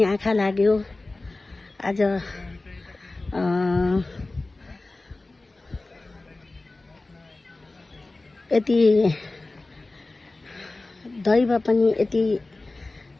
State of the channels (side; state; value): right; quieter; 3.1 dB